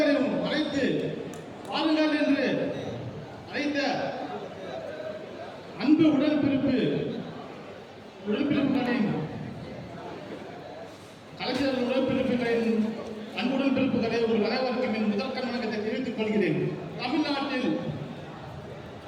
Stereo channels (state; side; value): identical; both; correlation 1.00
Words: அழைத்து வாருங்கள் என்று அழைத்த அன்பு உடன்பிறப்புகளின் கலைஞர்கள் உடன்பிறப்புகளின் அன்புடன் பிறப்புகளை ஒரு அனைவருக்கும் என் முதல் கண்ணோட்டத்தை தெரிவித்துக் கொள்கிறேன். தமிழ்நாட்டில்